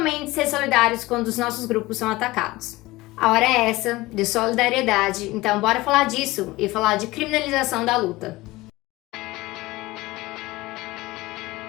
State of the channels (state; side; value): quieter; right; 19.6 dB